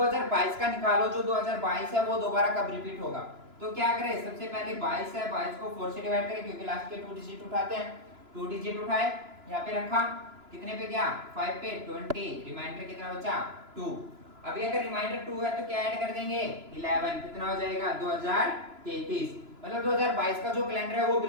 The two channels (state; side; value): late; left; 3.0 ms